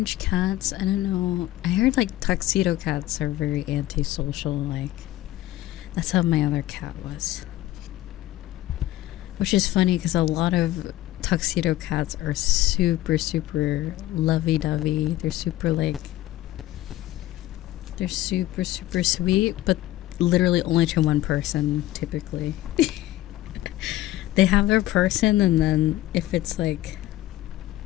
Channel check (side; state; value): right; quieter; 15.5 dB